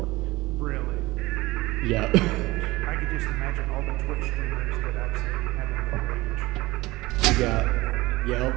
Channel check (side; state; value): left; quieter; 20.2 dB